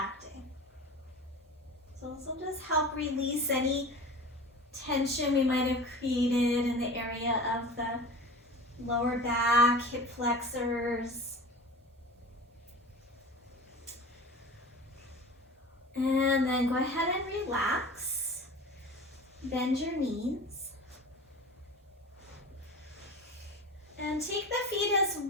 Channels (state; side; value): normal; both; correlation 0.35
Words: So this will just help release any tension we might have created in the area of the lower back, hip flexors. And then go ahead and relax. Bend your knees. And take the feet as